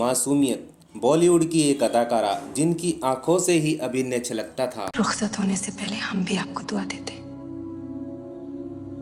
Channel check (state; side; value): identical; both; correlation 1.00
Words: बॉलीवुड की एक अदाकारा जिनकी आंखों से ही अभिनय छलकता था। रुखसत होने से पहले हम भी आपको दुआ देते